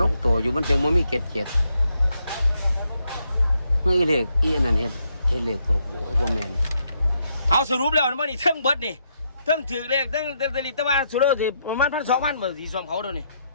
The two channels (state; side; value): inverted; both; correlation -0.77